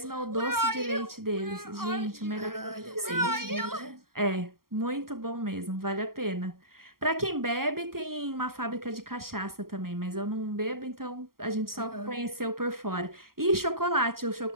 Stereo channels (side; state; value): left; late; 0.92 ms